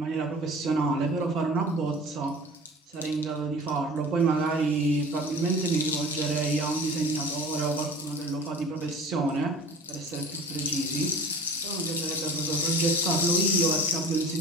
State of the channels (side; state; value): both; normal; correlation 0.40